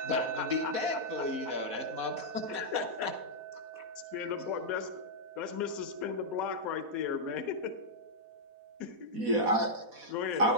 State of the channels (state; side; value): late; left; 4.1 ms